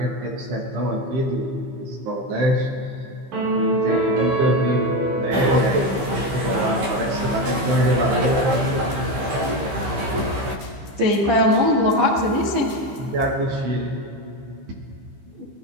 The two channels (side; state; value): left; late; 15 ms